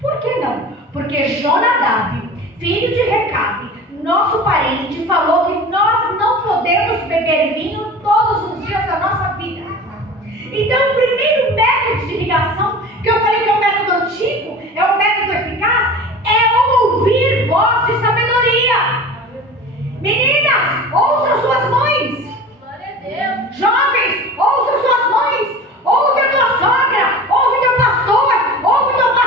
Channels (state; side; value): normal; both; correlation 0.37